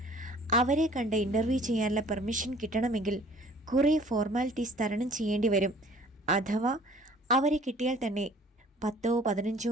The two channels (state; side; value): normal; both; correlation 0.52